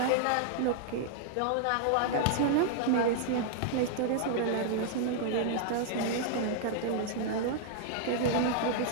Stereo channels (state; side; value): different; both; correlation -0.01